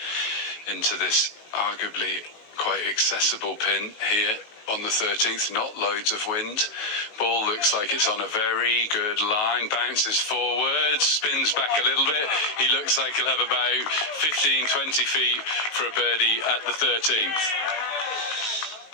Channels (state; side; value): late; right; 19 ms